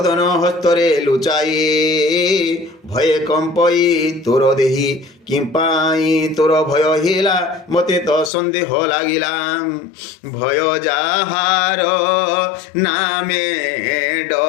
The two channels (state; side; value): drops out; right; at 8.3 s